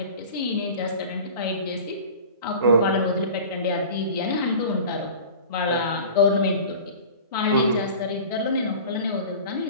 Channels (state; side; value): inverted; both; correlation -0.39